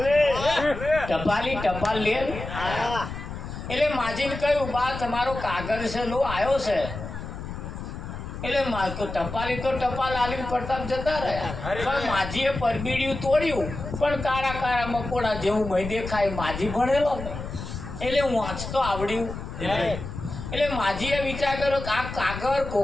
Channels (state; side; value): noise; left; rumble, 8 dB below the sound